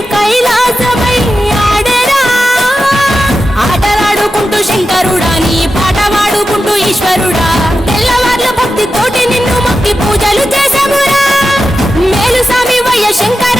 కైలాసమై ఆడెరా ఆటలాడుకుంటూ శంకరుడా నీ పాట వాడుకుంటూ ఈశ్వరుడా తెల్లవార్ల భక్తి తోటి నిన్ను మొక్కి పూజలు చేసామురా మేలు స్వామి వయ్య శంకర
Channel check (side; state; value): both; normal; correlation 0.91